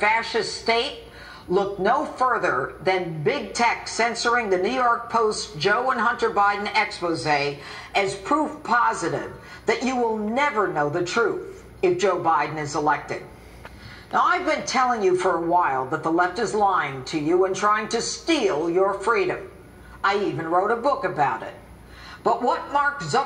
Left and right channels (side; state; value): both; identical; correlation 1.00